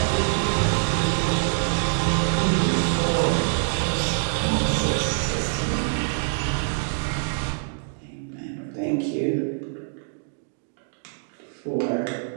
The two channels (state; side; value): silent; left; digital silence